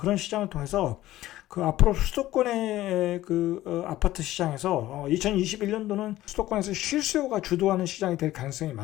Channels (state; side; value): quieter; right; 15.2 dB